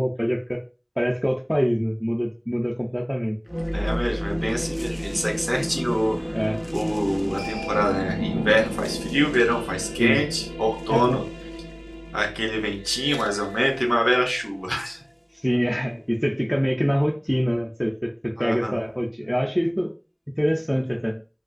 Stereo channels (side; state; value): both; identical; correlation 1.00